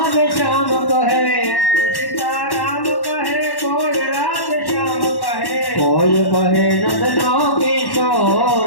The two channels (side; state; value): right; late; 1.1 ms